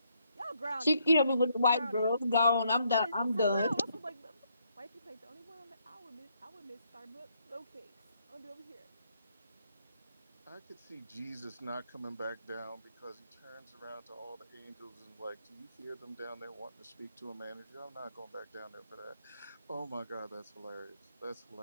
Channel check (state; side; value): inverted; both; correlation -0.73